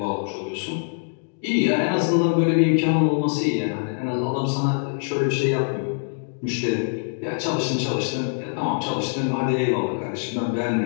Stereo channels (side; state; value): right; silent; digital silence